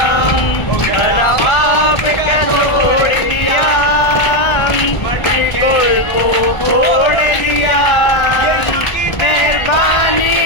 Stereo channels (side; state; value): right; late; 1.4 ms